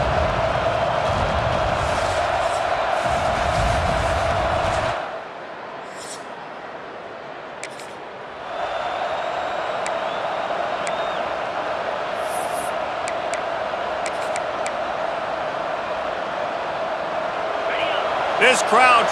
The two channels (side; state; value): both; identical; correlation 1.00